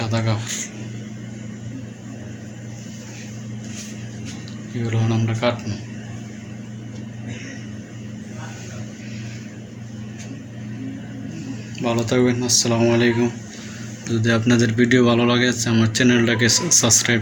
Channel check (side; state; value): both; identical; correlation 1.00